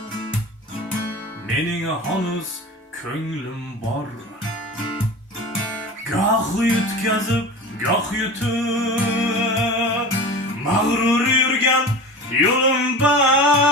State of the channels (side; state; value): both; normal; correlation 0.32